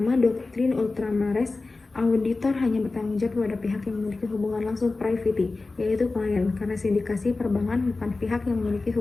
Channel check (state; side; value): quieter; right; 3.5 dB